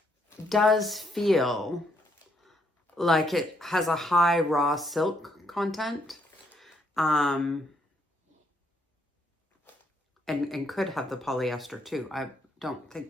does feel like it has a high raw silk content. And could have the polyester too. I don't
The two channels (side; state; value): both; normal; correlation 0.72